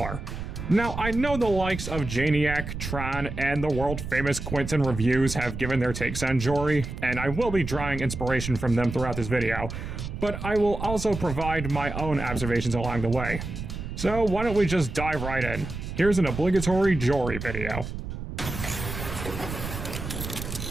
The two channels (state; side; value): noise; right; rumble, 7 dB below the sound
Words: Now, I know the likes of Janiac, Tron, and the world-famous Quentin Reviews have given their takes on Jori, and I will be drawing inspiration from them throughout this video, but I will also provide my own observations along the way. So why don't we just dive right in? Here's an obligatory Jori video.